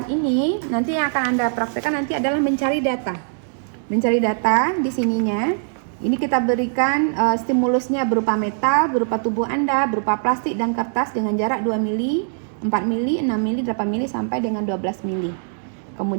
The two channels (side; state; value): left; silent; digital silence